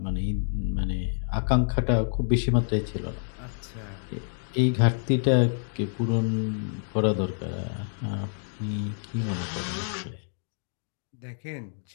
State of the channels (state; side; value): silent; right; digital silence